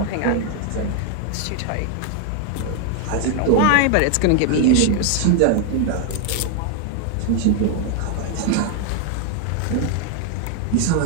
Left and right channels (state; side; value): different; both; correlation 0.00